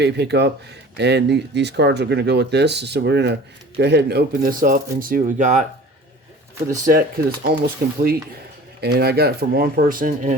pickup, and these cards are going to go with this. So we're going to go ahead and open this up and see what we got for the set because it's almost complete. And I got it from one person,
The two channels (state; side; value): normal; both; correlation 0.43